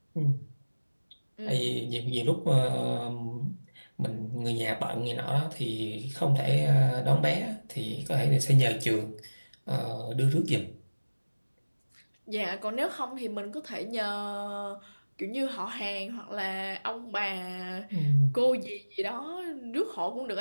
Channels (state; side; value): inverted; both; correlation -1.00